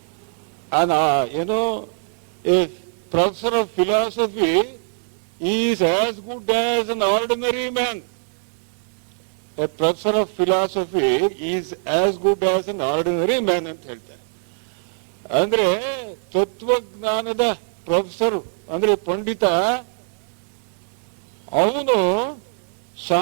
ಏನೋ A professor of philosophy is as good as an ordinary man. A professor of philosophy is as good as an ordinary man ಅಂತ ಹೇಳ್ತಾರೆ. ಅಂದ್ರೆ ತತ್ವಜ್ಞಾನದ ಪ್ರೊಫೆಸರ್ ಅಂದ್ರೆ ಪಂಡಿತ, ಅವನು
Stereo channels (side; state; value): left; silent; digital silence